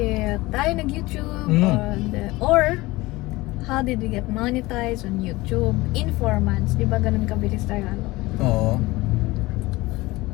tayo nag-YouTube or how did we get monetized on YouTube in 4 months. Di ba ganun kabilis tayo ano? Oo.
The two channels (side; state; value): right; quieter; 20.4 dB